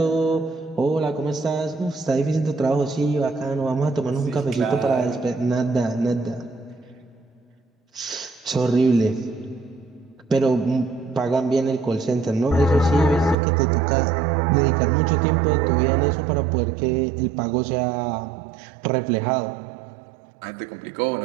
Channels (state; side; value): drops out; left; at 13.4 s